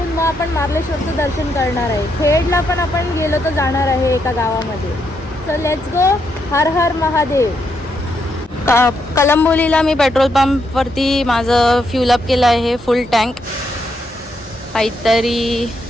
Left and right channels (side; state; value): both; normal; correlation 0.79